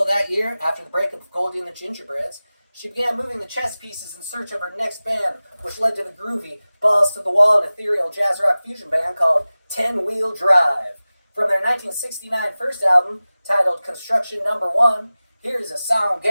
that year, after the breakup of Goldie and the Gingerbreads, she began moving the chess pieces in search of her next band, which led to the groovy, balls-to-the-wall and ethereal jazz rock fusion band called 10 Wheel Drive. From their 1969 first album, titled Construction No. 1, here is a song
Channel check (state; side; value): inverted; both; correlation -0.97